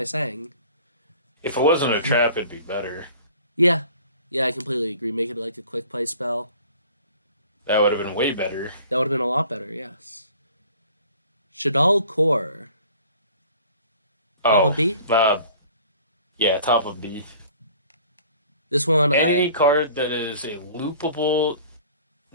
saying? If it wasn't a trap, it'd be better. Yeah, yeah, I completely agree. Make it like a quick play spell. That would have been way better. That would have been a lot better. Yes. Shaddoll Core. Top Oh, of B. yeah, top of B. This one, Any card that is a loopable,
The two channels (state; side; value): inverted; both; correlation -0.49